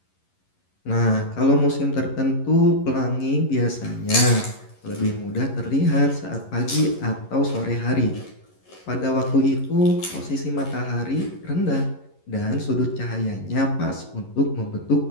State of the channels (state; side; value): late; right; 11 ms